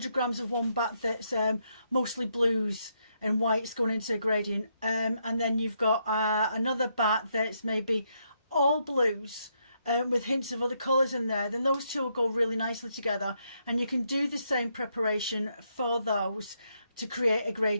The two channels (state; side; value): inverted; both; correlation -0.77